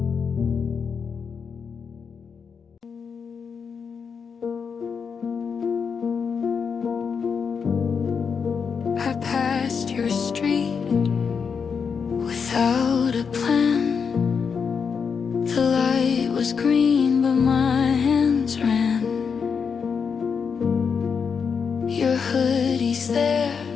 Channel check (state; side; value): quieter; right; 6.1 dB